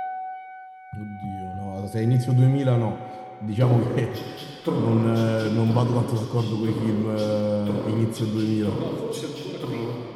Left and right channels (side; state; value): both; identical; correlation 1.00